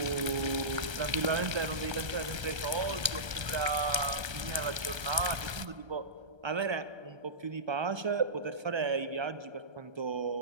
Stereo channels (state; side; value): late; left; 1.3 ms